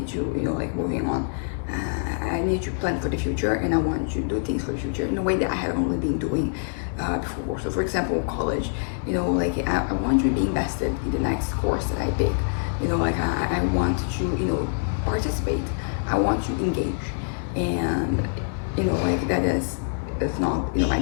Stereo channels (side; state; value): right; silent; digital silence